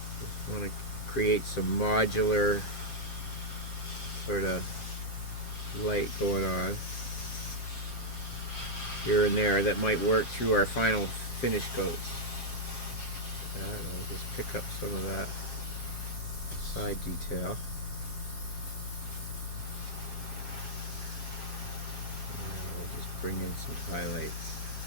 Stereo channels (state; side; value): late; right; 7.5 ms